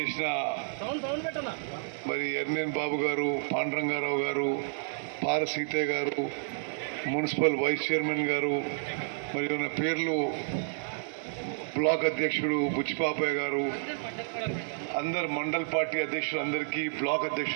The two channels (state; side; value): silent; left; 58 dB below the other